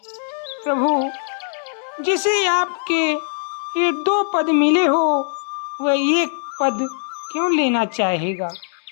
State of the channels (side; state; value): right; silent; digital silence